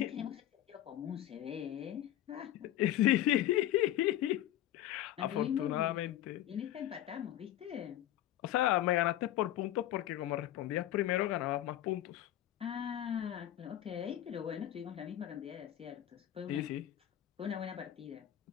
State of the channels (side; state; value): right; quieter; 12.9 dB